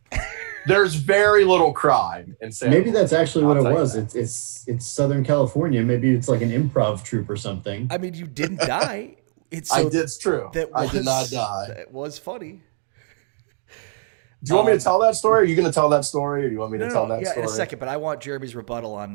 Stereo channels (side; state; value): left; silent; 59 dB below the other